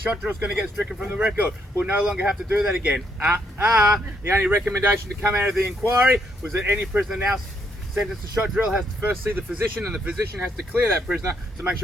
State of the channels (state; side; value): normal; both; correlation 0.74